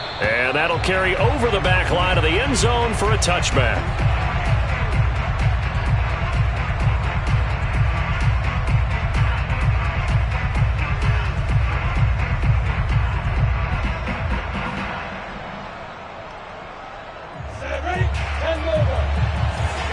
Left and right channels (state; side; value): identical; both; correlation 1.00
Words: And that'll carry over the back line of the end zone for a touchback.